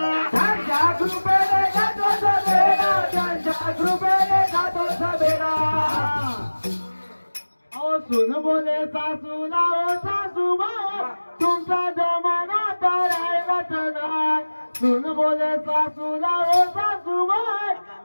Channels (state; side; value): inverted; both; correlation -1.00